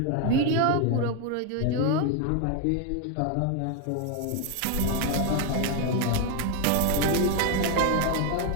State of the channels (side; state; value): both; different; correlation 0.01